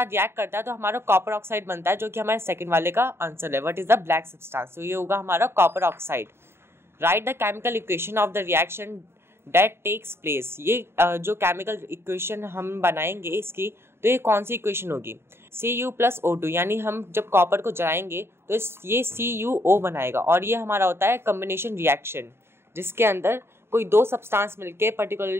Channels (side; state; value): left; late; 0.12 ms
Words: रिएक्ट करता है तो हमारा कॉपर ऑक्साइड बनता है, जो कि हमारे सेकंड वाले का आंसर है। What is the black substance? तो ये होगा हमारा copper oxide. Write the chemical equation of the reaction that takes place. ये जो केमिकल इक्वेशन हम बनाएंगे इसकी, तो ये कौन सी इक्वेशन होगी? Cu+O2, यानी हम जब कॉपर को जलाएंगे तो ये CuO बनाएगा और ये हमारा होता है कॉम्बिनेशन रिएक्शन, जिसके अंदर कोई दो सब्सटेंस मिलके